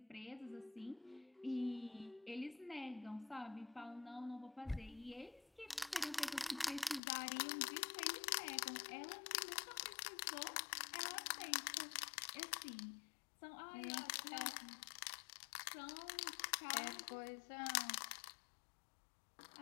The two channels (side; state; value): right; drops out; at 7.0 s